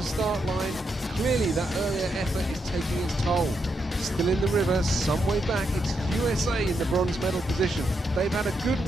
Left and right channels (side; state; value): both; normal; correlation 0.81